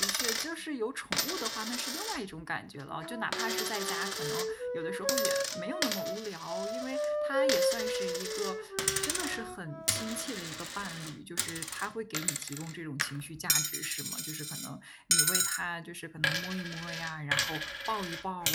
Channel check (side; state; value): both; identical; correlation 1.00